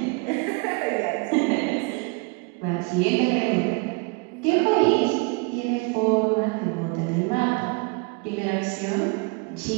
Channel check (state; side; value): quieter; left; 30.2 dB